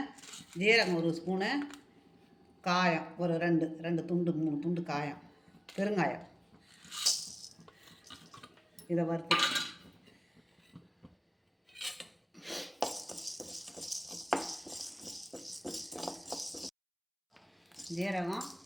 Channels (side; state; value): both; identical; correlation 1.00